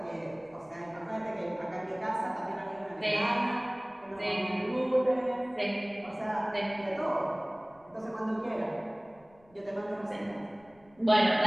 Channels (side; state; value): left; noise; rumble, 29 dB below the sound